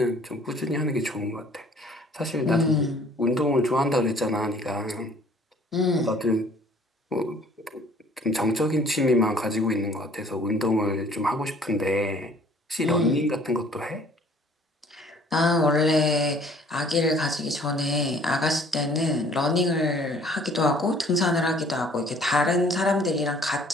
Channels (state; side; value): normal; both; correlation 0.56